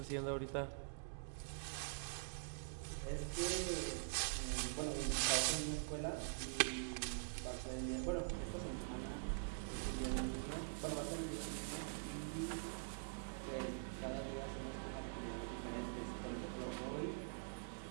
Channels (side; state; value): left; silent; digital silence